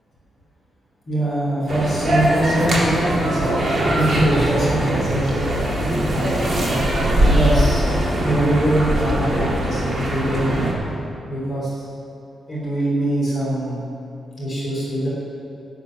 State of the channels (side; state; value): both; normal; correlation 0.82